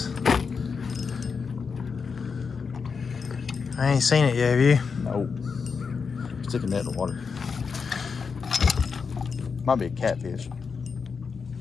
I ain't seen it yet, have you? No. Stick a net in the water. Might be a catfish.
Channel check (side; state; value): right; quieter; 5.5 dB